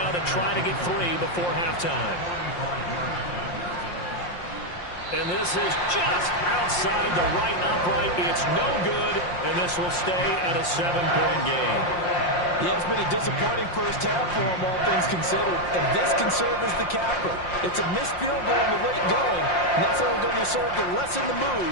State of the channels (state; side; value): late; right; 5.7 ms